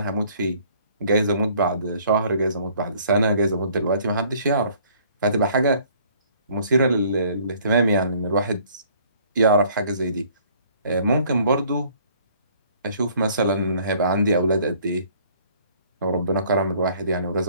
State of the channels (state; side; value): inverted; both; correlation -0.58